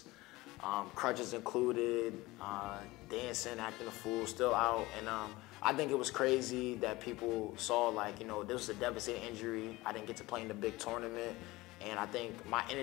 crutches included, dancing, acting a fool, still out. And I think it was crazy that people saw like, this was a devastating injury. I didn't get to play in the big tournament. And I think my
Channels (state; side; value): quieter; right; 20.2 dB